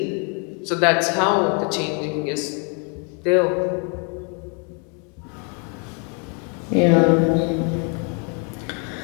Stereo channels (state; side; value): quieter; right; 37.1 dB